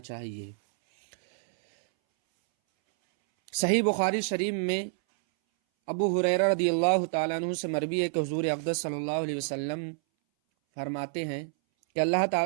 چاہیے۔ صحیح بخاری شریف میں ابو ہریرہ رضی اللہ تعالیٰ عنہ سے مروی ہے کہ حضور اقدس صلی اللہ علیہ وسلم فرماتے ہیں کہ اللہ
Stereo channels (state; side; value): silent; left; 59 dB below the other